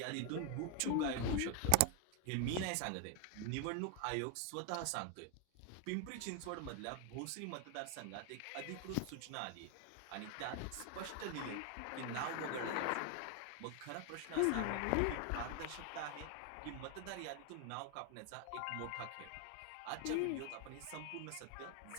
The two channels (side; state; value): both; different; correlation 0.01